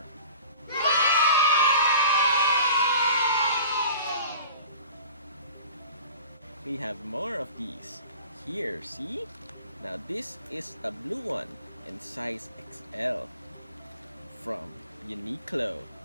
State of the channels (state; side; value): inverted; both; correlation -0.42